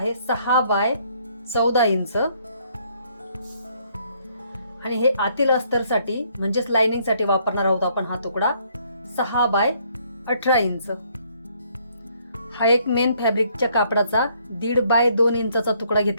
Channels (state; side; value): inverted; both; correlation -0.67